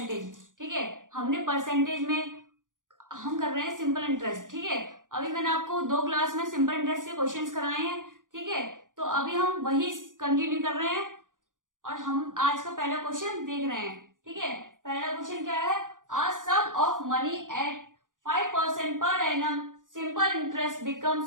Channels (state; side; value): late; left; 0.88 ms